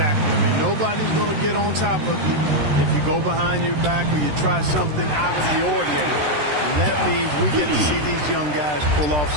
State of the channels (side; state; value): left; late; 13 ms